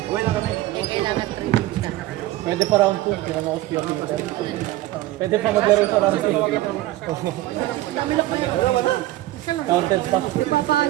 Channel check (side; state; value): left; quieter; 16.3 dB